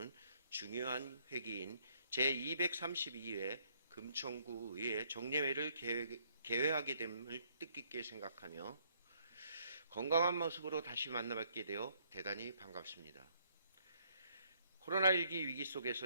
중요한 회기인 제232회 금천구 의회 정례회를 개회하게 됨을 뜻깊게 생각하며 건강한 모습으로 다시 만나뵙게 되어 대단히 반갑습니다. 코로나19 위기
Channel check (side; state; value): both; inverted; correlation -0.68